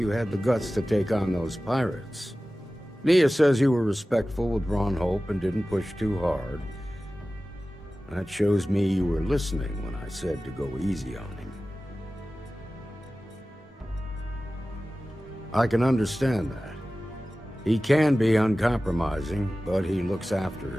had the guts to take on those pirates. Nia says you were respectful with Ron Hope and didn't push too hard. That shows me you were listening when I said to go easy on him. I can understand that. He can be uncompromising, but he looks after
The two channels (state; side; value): normal; both; correlation 0.96